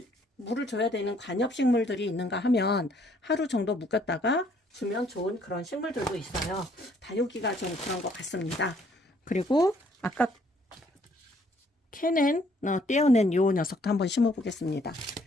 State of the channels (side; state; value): both; normal; correlation 0.64